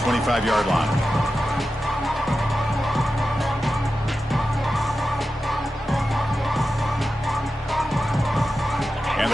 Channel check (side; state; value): both; normal; correlation 0.92